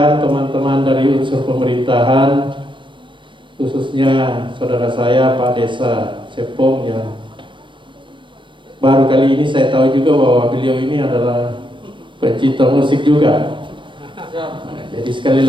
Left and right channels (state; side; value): late; left; 0.24 ms